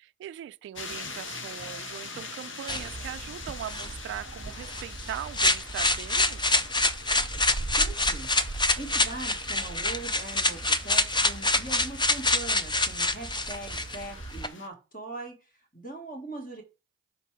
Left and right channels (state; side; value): normal; both; correlation -0.10